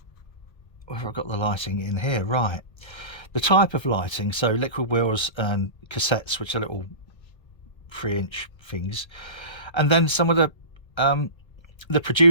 I've got the lighting in here right. The type of lighting, so liquid wheels and cassettes, which are little 3-inch things, and then some of the the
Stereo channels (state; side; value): late; right; 1.3 ms